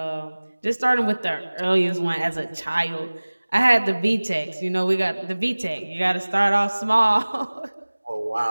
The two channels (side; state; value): both; inverted; correlation -1.00